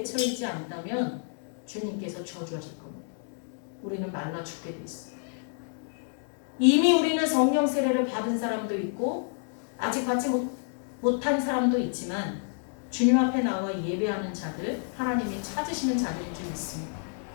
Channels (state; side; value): silent; right; 57 dB below the other